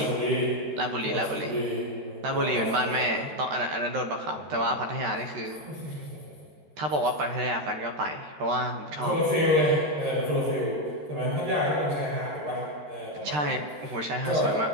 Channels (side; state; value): left; late; 13 ms